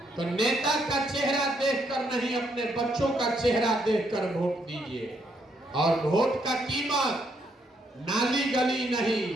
तो नेता का चेहरा देखकर नहीं, अपने बच्चों का चेहरा देखकर वोट दीजिए। और वोट का कीमत नाली गली नहीं,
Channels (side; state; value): both; normal; correlation 0.74